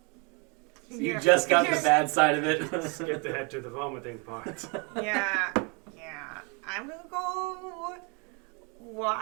You just got the bad side of it. Skipped ahead to the vomiting part. Yeah. I'm gonna go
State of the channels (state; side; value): quieter; left; 33.0 dB